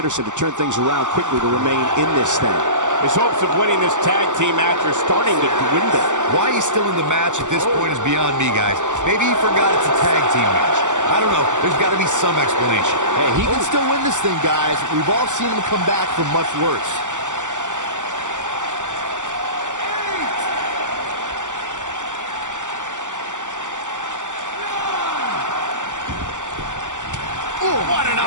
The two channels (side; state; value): left; late; 0.86 ms